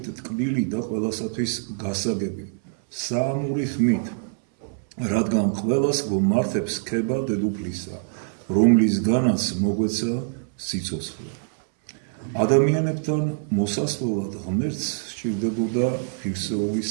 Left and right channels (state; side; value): silent; left; 61 dB below the other